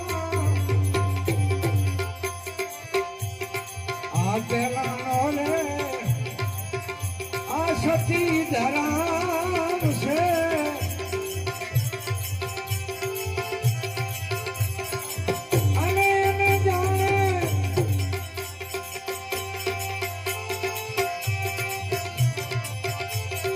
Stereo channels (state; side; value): identical; both; correlation 1.00